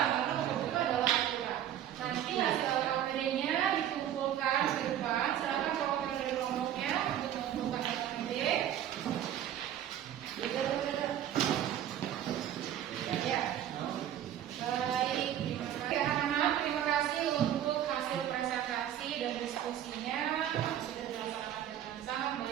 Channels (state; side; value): quieter; left; 11.0 dB